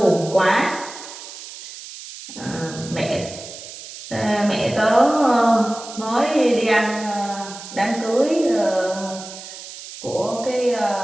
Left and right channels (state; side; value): noise; right; hiss, 13 dB below the sound